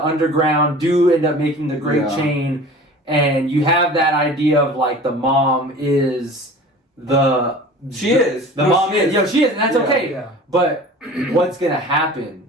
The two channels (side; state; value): both; normal; correlation 0.41